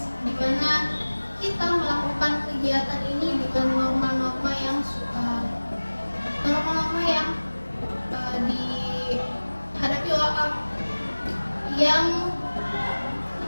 di mana kita melakukan kegiatan ini dengan norma-norma yang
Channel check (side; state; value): both; inverted; correlation -1.00